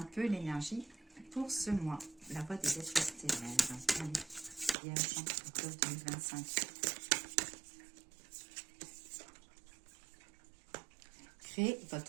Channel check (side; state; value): left; drops out; at 4.8 s